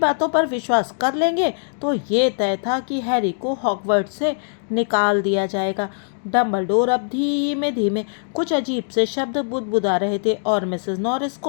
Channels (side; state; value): right; silent; digital silence